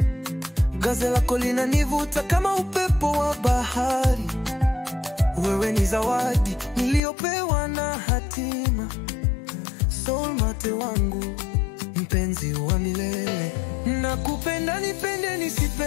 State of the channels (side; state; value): right; drops out; at 7.0 s